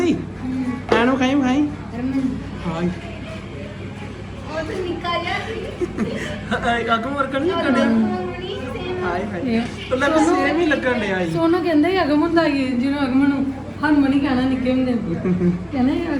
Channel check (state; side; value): identical; both; correlation 1.00